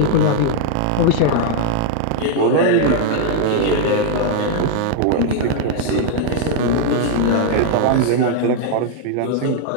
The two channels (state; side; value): different; both; correlation 0.00